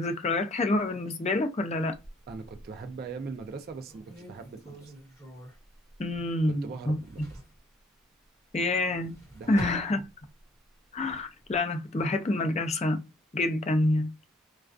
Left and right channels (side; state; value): both; normal; correlation 0.63